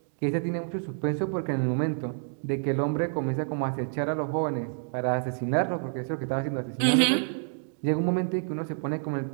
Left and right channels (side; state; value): left; silent; 59 dB below the other